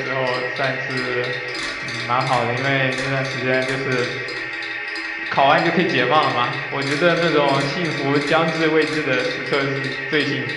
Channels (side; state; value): both; identical; correlation 1.00